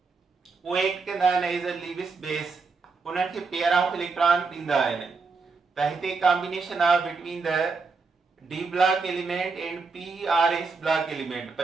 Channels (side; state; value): left; quieter; 4.5 dB